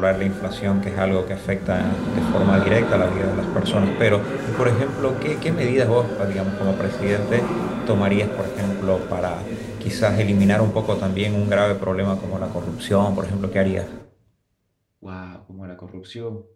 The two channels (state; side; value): identical; both; correlation 1.00